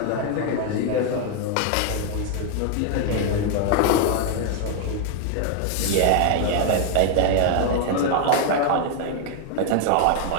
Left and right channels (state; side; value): different; both; correlation 0.00